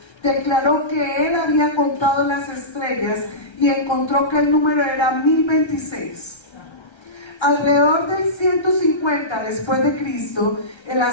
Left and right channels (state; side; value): late; right; 1.3 ms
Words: declaró que él había contado las estrellas y encontró que el número era 1026. Alrededor del 150 después de Cristo, el